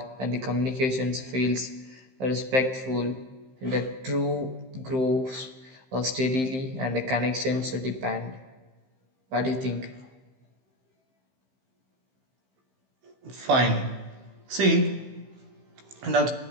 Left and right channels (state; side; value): late; left; 15 ms